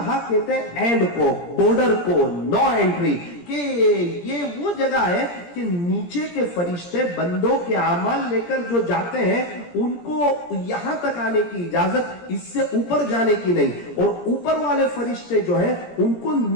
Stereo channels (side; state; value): right; late; 17 ms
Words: کہتے ہیں اینڈ کو، بارڈر کو، نو انٹری. کہ یہ وہ جگہ ہے کہ نیچے کے فرشتے بندوں کے اعمال لے کر جو جاتے ہیں ان کو یہاں تک آنے کی اجازت، اس سے اوپر جانے کی نہیں. اور اوپر والے فرشتے جو ہیں ان کو